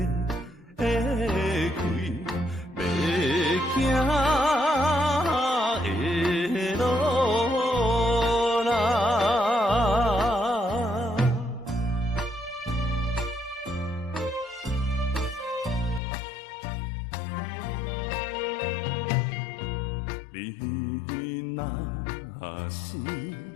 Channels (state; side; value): drops out; right; at 16.0 s